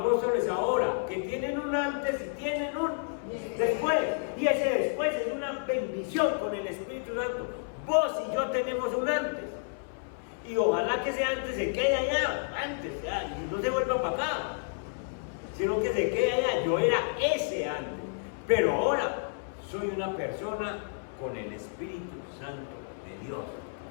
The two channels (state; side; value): silent; right; 57 dB below the other